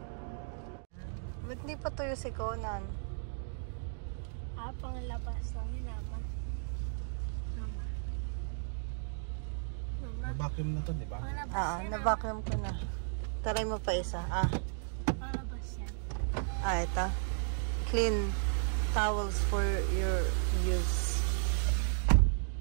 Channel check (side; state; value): left; silent; digital silence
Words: Ba't di pa tuyo si Conan? Pangalabas lang yun, Mama. Mama. Vacuum na to, di ba? Pangalabas yan, Na-vacuum ko na. Taray mo pa isa. Pangalabas yan. Ito. Clean towels for your use.